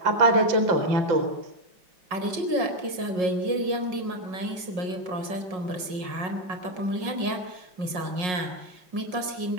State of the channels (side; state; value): left; late; 5.5 ms